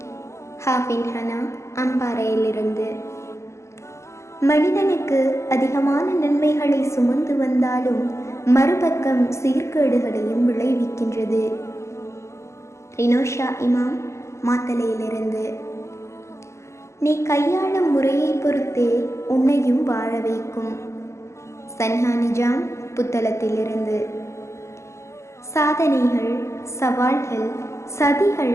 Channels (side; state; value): right; late; 0.14 ms